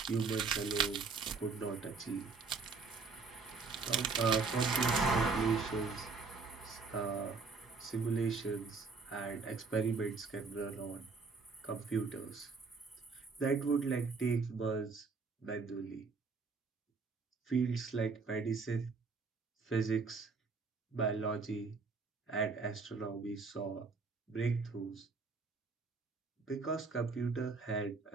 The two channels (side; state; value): left; quieter; 4.5 dB